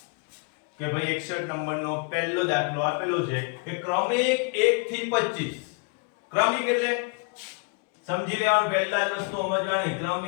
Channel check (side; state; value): right; quieter; 34.2 dB